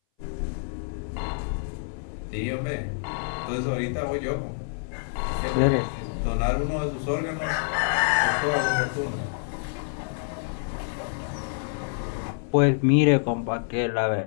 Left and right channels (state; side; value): silent; right; 59 dB below the other